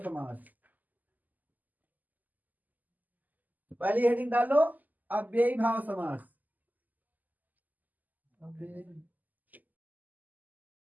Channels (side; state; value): left; late; 0.082 ms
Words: समास। पहली हेडिंग डालो अव्ययी भाव समास।